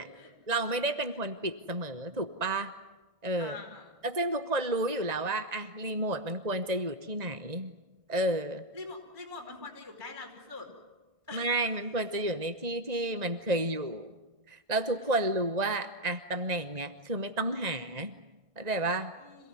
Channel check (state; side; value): late; left; 1.9 ms